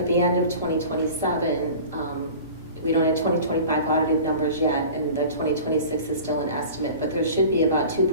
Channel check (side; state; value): both; inverted; correlation -0.40